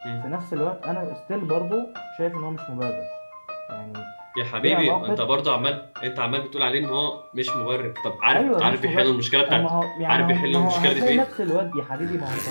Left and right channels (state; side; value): inverted; both; correlation -1.00